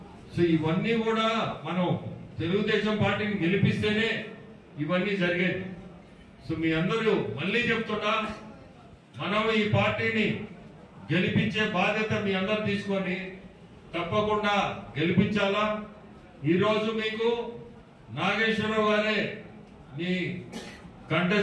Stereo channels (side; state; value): both; identical; correlation 1.00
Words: సో ఇవన్నీ కూడా మనం తెలుగుదేశం పార్టీని గెలిపిస్తేనే ఇవన్నీ జరిగేది. సో మీ అందరూ మళ్ళీ చెప్తున్నా, మనం ఈ పార్టీని గెలిపించే బాధ్యత మీ అందరు తీసుకొని తప్పకుండా గెలిపించాలా. ఈరోజు మీకు నాగేశ్వరరావు గారే మీ